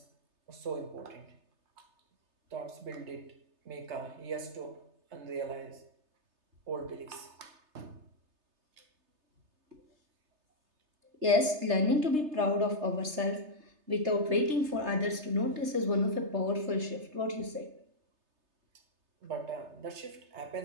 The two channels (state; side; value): late; left; 3.3 ms